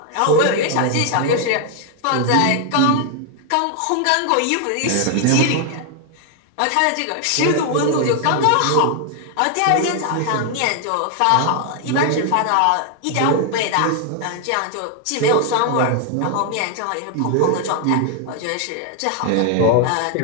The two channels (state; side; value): different; both; correlation 0.00